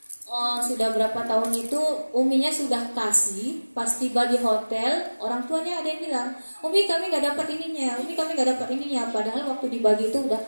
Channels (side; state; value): both; inverted; correlation -1.00